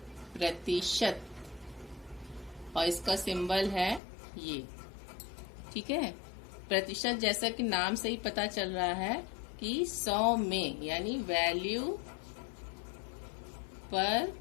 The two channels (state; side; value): drops out; right; at 4.0 s